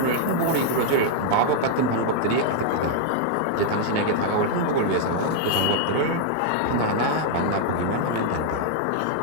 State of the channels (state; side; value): different; both; correlation -0.01